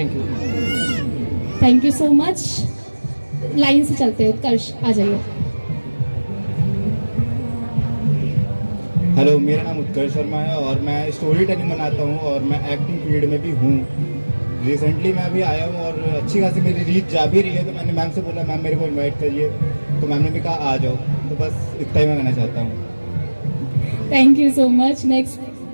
you. Thank you so much. Line से चलते हैं, उत्कर्ष आ जाइए। हेलो, मेरा नाम उत्कर्ष शर्मा है और मैं स्टोरी टेलिंग बनाता हूँ और मैं एक्टिंग फील्ड में भी हूँ। रिसेंटली मैं अभी आया हूँ और अच्छी खासी मेरी रीच जा भी रही है, तो मैंने मैम से बोला मैम मेरे को इनवाइट करिए, तो मैम ने भी कहा आ जाओ। तो बस इतना ही मैं कहना चाहता हूँ। Thank you so much. Next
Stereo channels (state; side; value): inverted; both; correlation -1.00